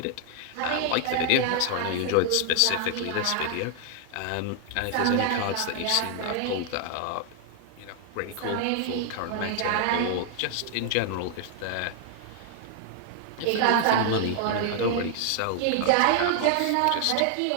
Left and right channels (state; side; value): different; both; correlation 0.00